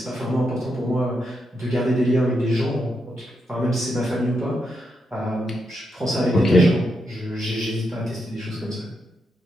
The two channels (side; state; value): both; normal; correlation 0.83